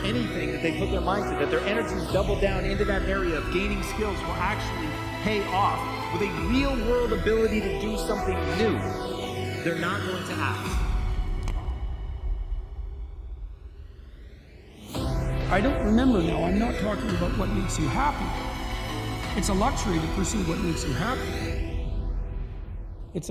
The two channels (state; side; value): identical; both; correlation 1.00